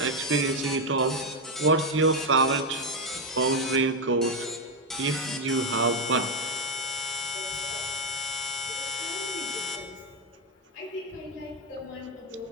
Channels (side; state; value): both; normal; correlation 0.06